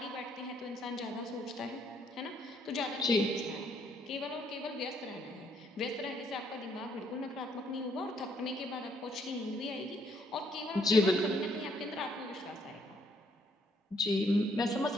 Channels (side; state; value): both; normal; correlation 0.68